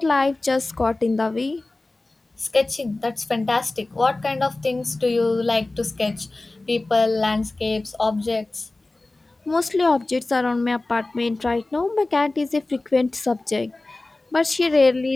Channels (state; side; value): quieter; right; 3.0 dB